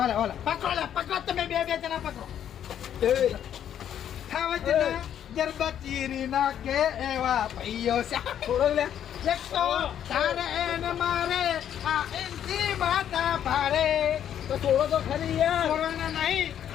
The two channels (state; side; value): quieter; right; 9.9 dB